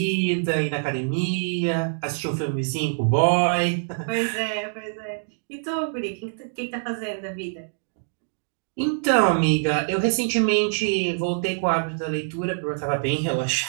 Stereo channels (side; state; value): left; silent; digital silence